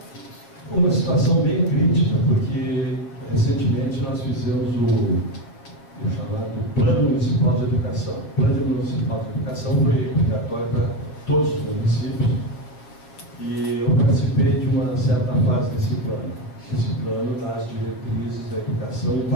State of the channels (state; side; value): late; right; 7.2 ms